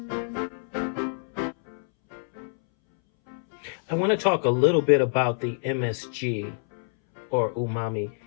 I want to talk a little bit about the MSG, or umami,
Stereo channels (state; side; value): silent; right; 61 dB below the other